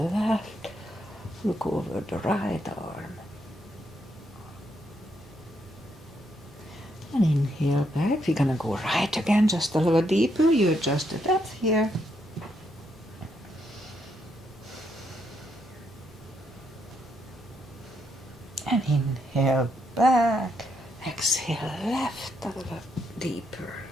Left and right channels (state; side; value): normal; both; correlation 0.77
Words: left, look over the right arm. And inhale back, we're gonna go right again, just a little deeper, you adjust the depth here. And inhale back, exhale left, a little deeper.